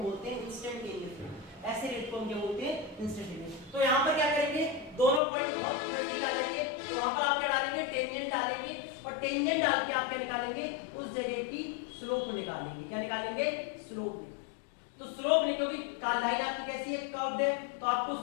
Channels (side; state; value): right; drops out; at 5.2 s